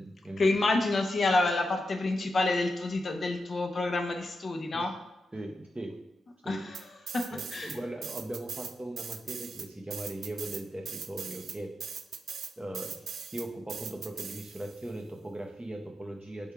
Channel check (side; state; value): both; normal; correlation 0.88